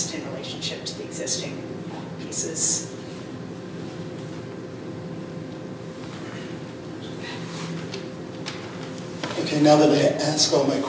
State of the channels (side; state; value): both; identical; correlation 1.00